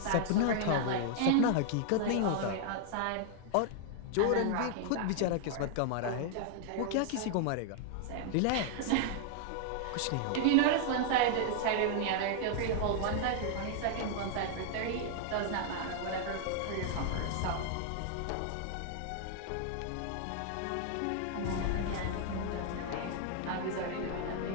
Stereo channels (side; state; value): both; different; correlation 0.00